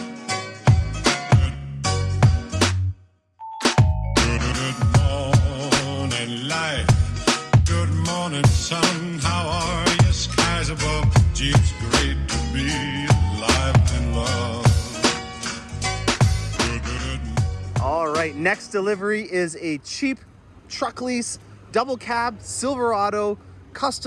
Next delivery is a cheap truck lease, double cab, Silverado,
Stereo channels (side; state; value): both; identical; correlation 1.00